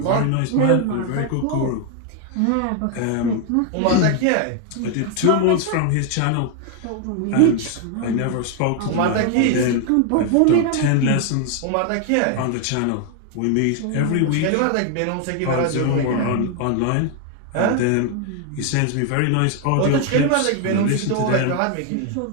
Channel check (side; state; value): both; different; correlation 0.01